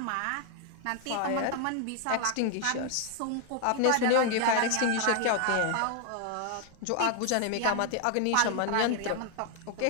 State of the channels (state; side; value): different; both; correlation 0.00